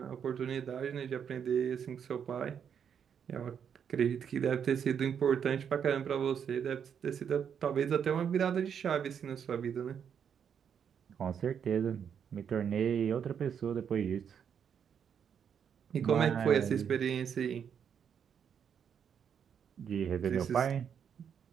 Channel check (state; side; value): quieter; left; 7.8 dB